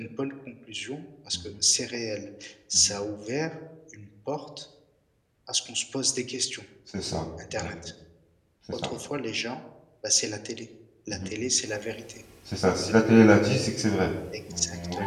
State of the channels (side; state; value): both; identical; correlation 1.00